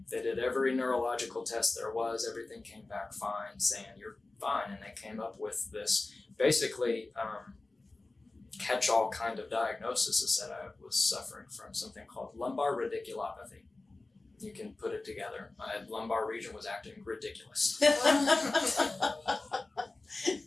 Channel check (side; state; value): right; quieter; 3.2 dB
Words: They did every neurological test there was. Everything came back fine, saying you're fine. And they came up with this basically catch-all kind of diagnosis that said I was suffering from something called lumbar radiculopathy. You can put it together. My lumbar region was acting ridiculous.